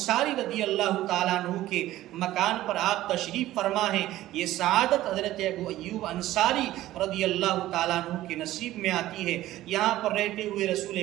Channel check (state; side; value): quieter; left; 15.0 dB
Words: رضی اللہ تعالیٰ عنہ کے مکان پر آپ تشریف فرما ہیں، یہ سعادت حضرت ابو ایوب انصاری رضی اللہ تعالیٰ عنہ کے نصیب میں آتی ہے۔ یہاں پر رہتے ہوئے